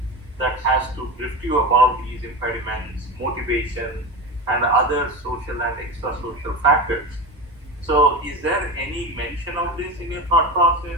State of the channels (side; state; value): both; normal; correlation 0.24